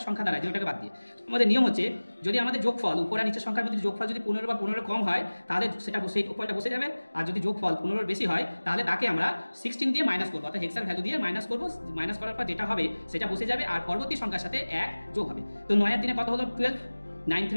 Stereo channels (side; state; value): both; inverted; correlation -1.00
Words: সংখ্যা দাঁড়ায় 0টাকে বাদ দিয়ে। আমাদের নিয়ম হচ্ছে যদি আমাদের যোগফল উপর আর নিচের সংখ্যার মধ্যে যোগফল যদি 15 বা 15 কম হয় তাহলে সেটা সেই উপরটা বসে যাবে, আর যদি যোগফল 15 বেশি হয় তাহলে তাকে আমরা 16 দিয়ে মাইনাস করবো, অর্থাৎ হেক্সার ভ্যালু দিয়ে মাইনাস করবো। মাইনাস করার পর যেটা হবে সেটা বসে যাবে আর পরবর্তী সংখ্যার সাথে 1 যোগ হবে। তো 9 এর দিনে কত হলো 12, 9